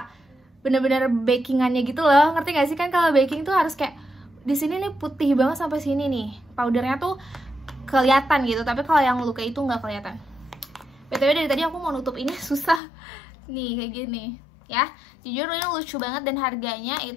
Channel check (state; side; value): drops out; right; at 12.8 s